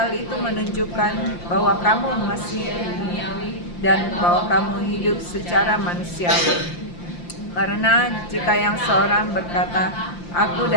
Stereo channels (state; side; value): late; right; 5.8 ms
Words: itu menunjukkan bahwa kamu masih duniawi dan bahwa kamu hidup secara manusiawi? Karena jika yang seorang berkata, aku